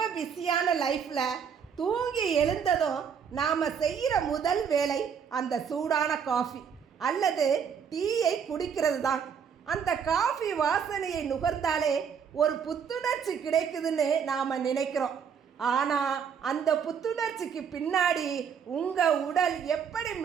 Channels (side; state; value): left; quieter; 7.1 dB